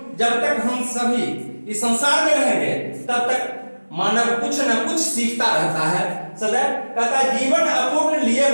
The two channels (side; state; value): both; inverted; correlation -1.00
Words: जब तक हम सभी इस संसार में रहेंगे तब तक मानव कुछ न कुछ सीखता रहता है सदैव। कहता है जीवन अपूर्ण लिए